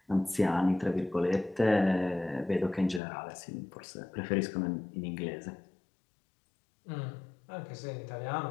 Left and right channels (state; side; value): drops out; right; at 3.0 s